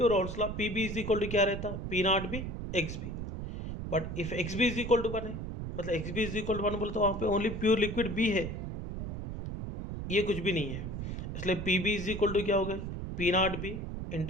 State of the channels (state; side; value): noise; right; rumble, 6 dB below the sound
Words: Raoult's law P B is equal to क्या रहता, P naught B x B, but if x B is equal to 1 है, मतलब x B is equal to 1 बोले तो वहाँ पे ओनली प्योर लिक्विड बी है, ये कुछ भी नहीं है, इसलिए P B is equal to क्या हो गया, पी नॉट बी